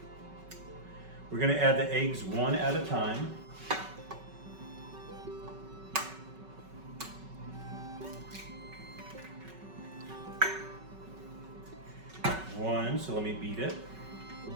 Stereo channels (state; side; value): late; left; 5.3 ms